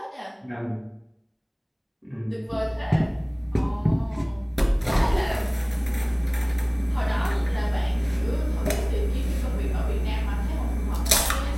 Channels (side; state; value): both; identical; correlation 1.00